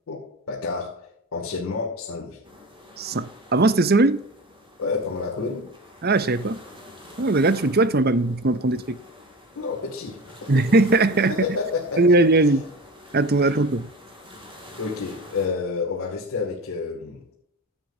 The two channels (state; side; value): normal; both; correlation 0.32